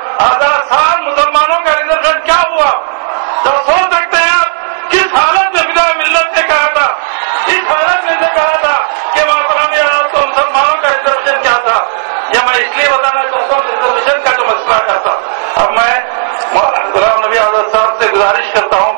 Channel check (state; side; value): silent; left; digital silence